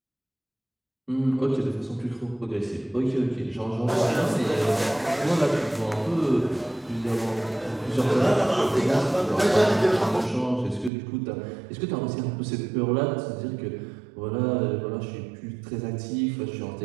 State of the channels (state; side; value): drops out; left; at 10.9 s